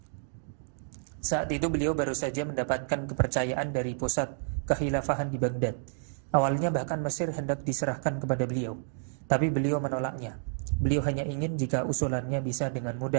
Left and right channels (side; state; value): left; silent; digital silence